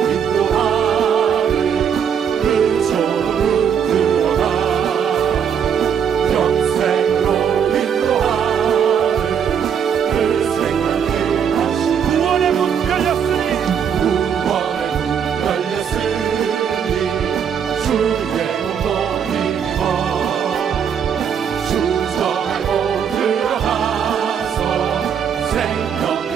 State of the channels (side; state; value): left; quieter; 7.8 dB